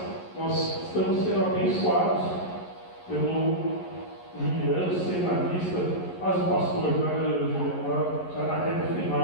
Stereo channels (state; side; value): late; right; 11 ms